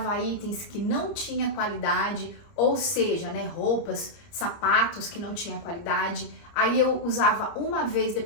itens que não tinha qualidade, ou seja, né, roupas, sapatos que não tinha qualidade. Aí eu usava uma vez,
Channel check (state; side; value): late; right; 30 ms